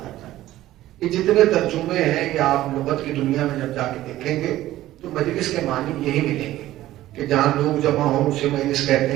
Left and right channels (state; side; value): quieter; left; 14.9 dB